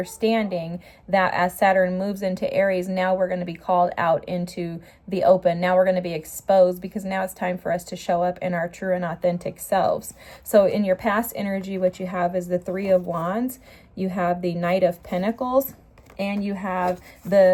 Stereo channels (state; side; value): identical; both; correlation 1.00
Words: that as Saturn moves into Aries, now we're going to be called out into the open. Now we're going to be exposed, because now it's time for us to show up in our true and authentic selves. So in your past energy, what you have is the Three of Wands, you have the Knight of Pentacles, and you have